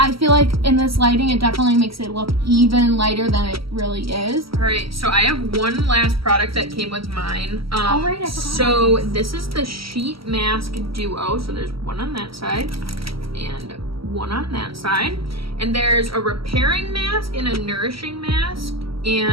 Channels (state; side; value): late; left; 0.75 ms